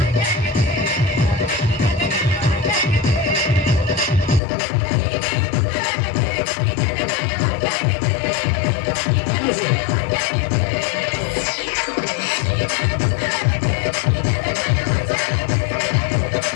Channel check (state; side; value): drops out; right; at 4.4 s